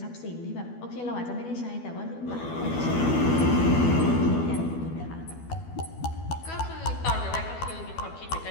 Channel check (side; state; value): right; late; 12 ms